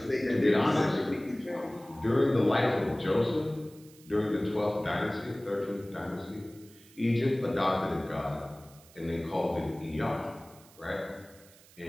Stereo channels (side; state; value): right; noise; hiss, 24 dB below the sound